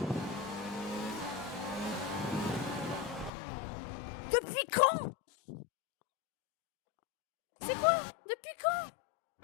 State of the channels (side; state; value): right; drops out; at 3.3 s